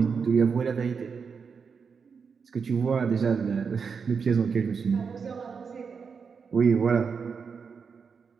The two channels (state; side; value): quieter; left; 5.8 dB